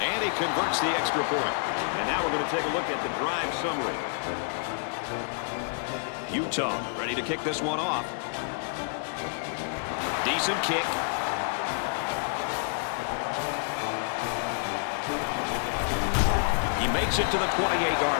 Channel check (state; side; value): silent; right; digital silence